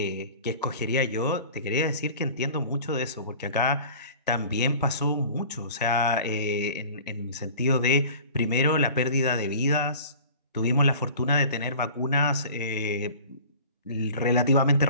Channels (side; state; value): both; inverted; correlation -0.43